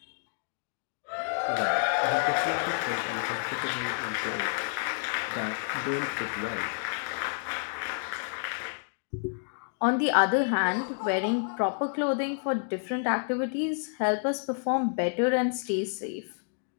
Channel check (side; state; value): right; silent; digital silence